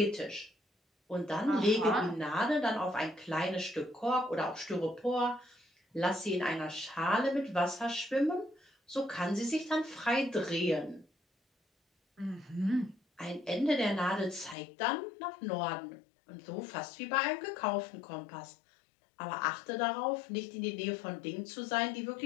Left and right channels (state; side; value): drops out; right; at 14.6 s